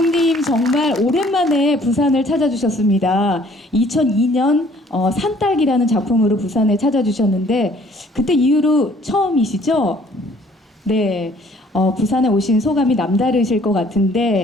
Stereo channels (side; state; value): both; normal; correlation 0.58